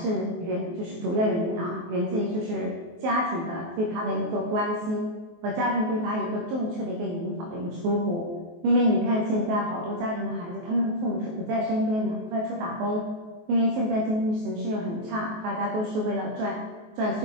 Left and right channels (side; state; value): left; late; 23 ms